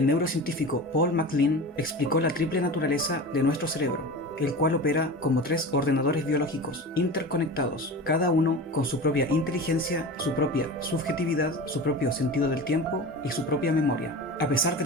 neurocientífico Paul MacLean explicó la triple naturaleza de nuestro cerebro, el cual opera como 3 ordenadores biológicos interconectados, cada uno con su propia inteligencia, su propia subjetividad, su propio sentido del tiempo y su propia memoria. A pesar de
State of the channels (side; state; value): both; normal; correlation 0.31